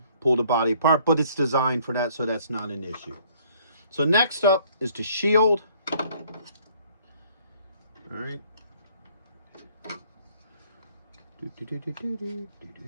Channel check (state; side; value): inverted; both; correlation -0.60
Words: pull the body apart, but it's designed for that, so that's not an issue. So next up is the shield. All right.